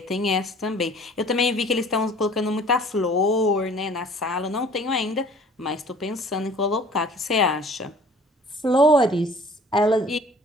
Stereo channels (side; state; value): both; normal; correlation 0.50